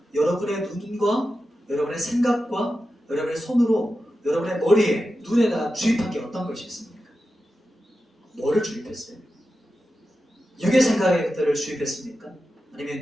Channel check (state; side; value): normal; both; correlation 0.91